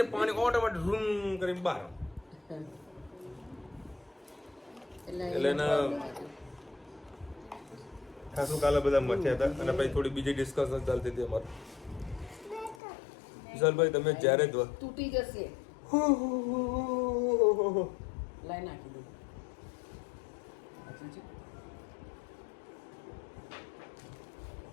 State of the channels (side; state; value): right; drops out; at 12.8 s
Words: પાણી ઓટોમેટિક રૂમ કરીને બહાર. એટલે એના ખાસું કાલે બધા મથ્યા હતા. અને પછી થોડી બીજી ડિસ્કશન ચાલતી હતી અમારે. વિશાલભાઈ તમે જ્યારે તૂટી જશે લાઈ નાખી દઉં.